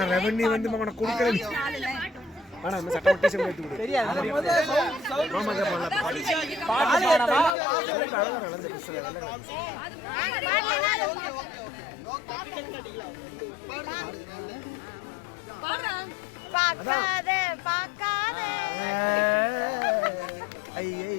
ரெவன்யூ வந்து அவனை கொடுக்கறது ஆனா இந்த சட்டம் டீச்சர் எடுத்து கொடு தெரியாது மாமா தான் பாக்காத பாக்காத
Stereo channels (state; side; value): drops out; right; at 7.5 s